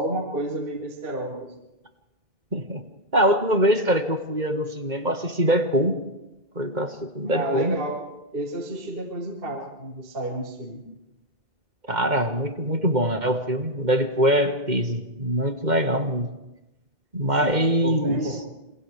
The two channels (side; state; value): left; late; 2.1 ms